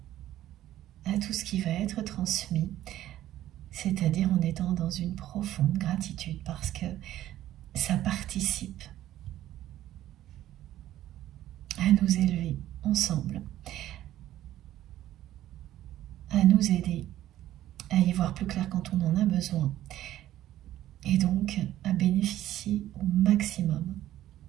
à tout ce qui va être transmis, c'est-à-dire en étant dans une profonde gratitude parce que ça participe à nous élever ensemble, à nous aider à y voir plus clair quand on en a besoin et donc à bénéficier au maximum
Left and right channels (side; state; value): left; quieter; 13.4 dB